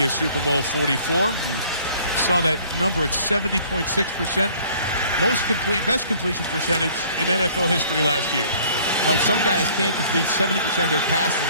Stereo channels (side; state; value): both; inverted; correlation -0.55